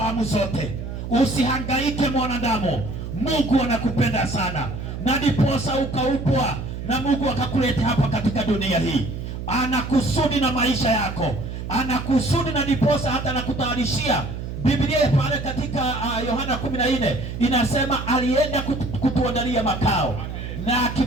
zote. Usihangaike mwanadamu, Mungu anakupenda sana, na ndiposa ukaupwa na Mungu akakuleta hapa katika dunia hii. Anakusudi na maisha yako, anakusudi, na ndiposa hata anakutayarishia. Biblia pale katika Yohana 14 inasema alienda kutuandalia makao, na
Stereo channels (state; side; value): noise; right; hum, 7 dB below the sound